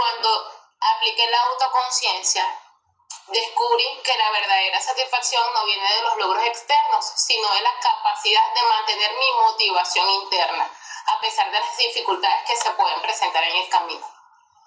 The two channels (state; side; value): identical; both; correlation 1.00